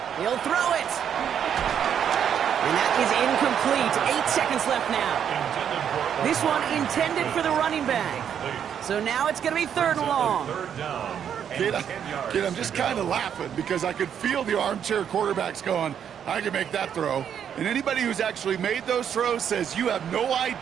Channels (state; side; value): quieter; left; 8.6 dB